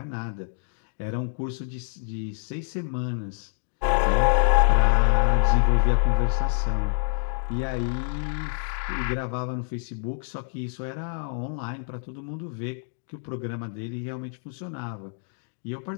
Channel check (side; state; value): right; silent; digital silence